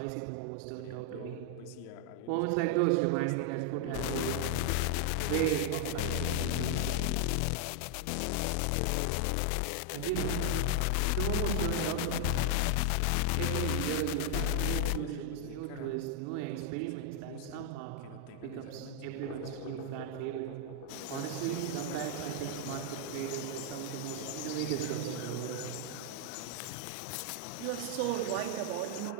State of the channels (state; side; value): different; both; correlation 0.00